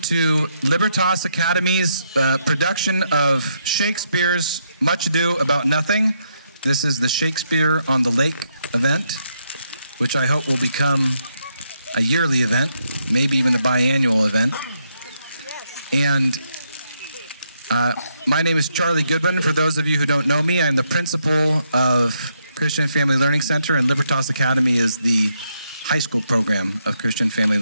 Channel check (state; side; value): inverted; both; correlation -0.77